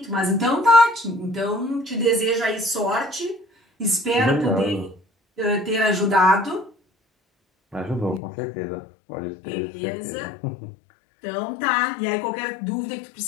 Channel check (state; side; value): drops out; right; at 8.2 s